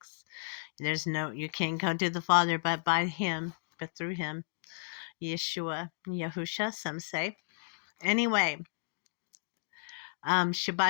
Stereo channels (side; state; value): right; silent; digital silence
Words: You can't go to the Father but by Him, but through Him. Yeshua, Yahusha, some say. Anyway.